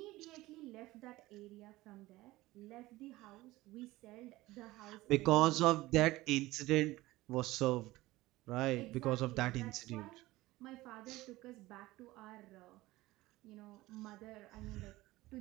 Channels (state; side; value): quieter; left; 18.5 dB